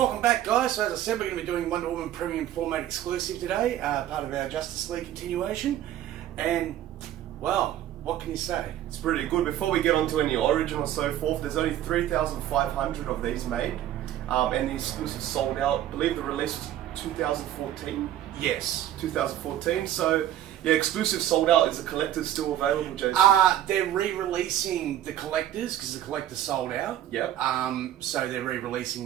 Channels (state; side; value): quieter; left; 12.2 dB